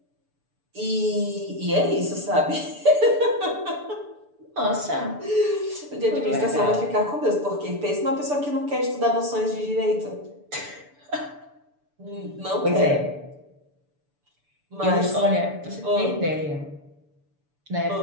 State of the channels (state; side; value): late; left; 6.9 ms